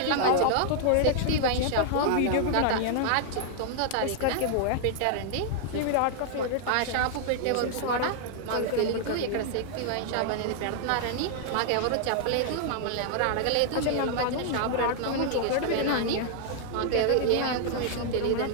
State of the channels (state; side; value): different; both; correlation 0.00